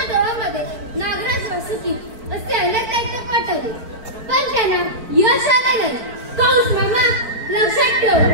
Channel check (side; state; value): left; late; 4.5 ms